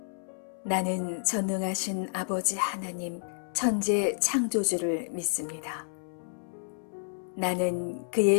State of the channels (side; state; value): right; silent; 58 dB below the other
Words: 나는 전능하신 아버지 하나님 천재 창조주를 믿습니다. 나는